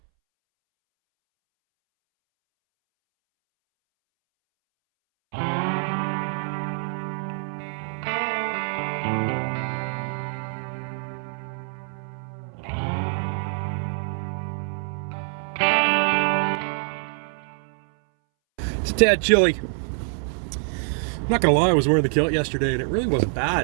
It's a tad chilly. I'm not gonna lie, I was wearing the kilt yesterday and it really wasn't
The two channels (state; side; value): silent; left; 62 dB below the other